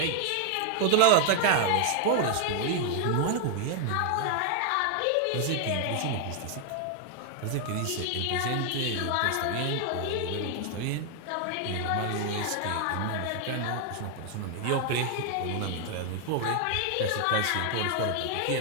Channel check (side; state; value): both; different; correlation 0.00